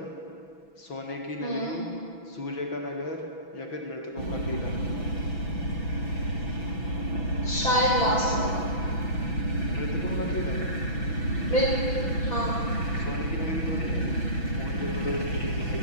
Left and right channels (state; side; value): late; right; 6.1 ms